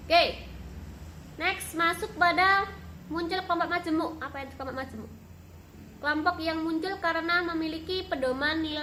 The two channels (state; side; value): identical; both; correlation 1.00